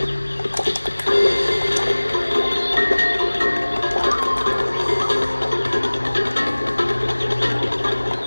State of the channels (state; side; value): inverted; both; correlation -1.00